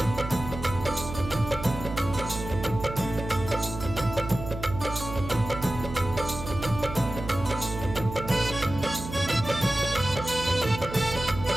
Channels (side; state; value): right; noise; hum, 9 dB below the sound